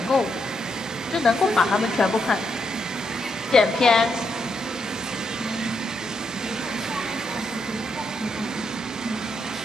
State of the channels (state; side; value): normal; both; correlation 0.79